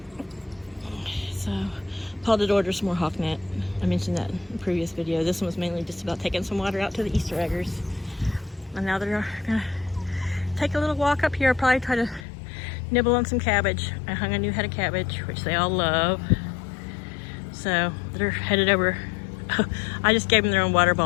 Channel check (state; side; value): drops out; right; at 12.2 s